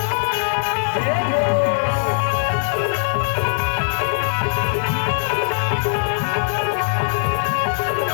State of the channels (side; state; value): right; silent; digital silence